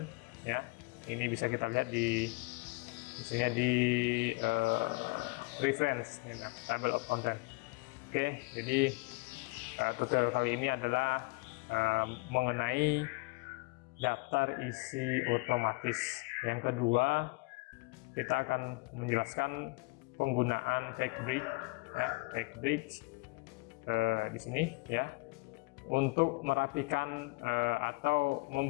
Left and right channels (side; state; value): right; quieter; 26.4 dB